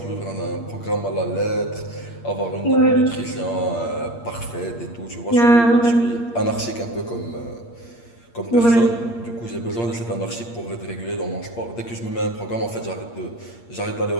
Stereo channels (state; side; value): late; right; 8.6 ms